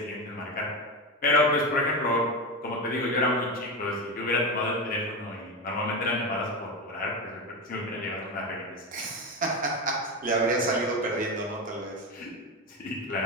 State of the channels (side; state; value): both; normal; correlation 0.17